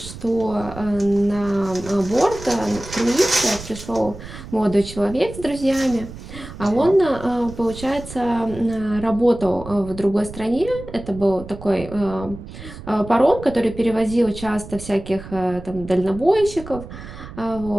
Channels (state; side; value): noise; right; rumble, 13 dB below the sound